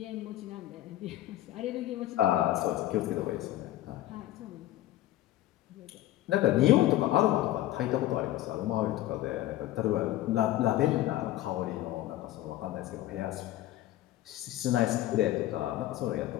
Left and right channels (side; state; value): right; quieter; 14.7 dB